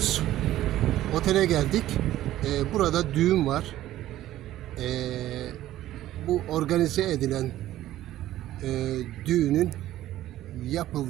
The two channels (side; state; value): left; quieter; 14.0 dB